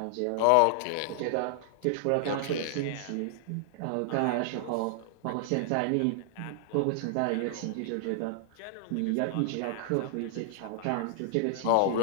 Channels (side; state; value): both; different; correlation -0.01